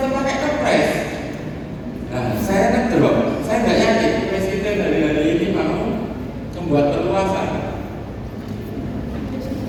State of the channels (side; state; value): both; identical; correlation 1.00